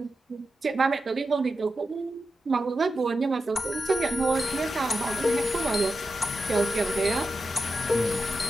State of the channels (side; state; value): both; normal; correlation 0.89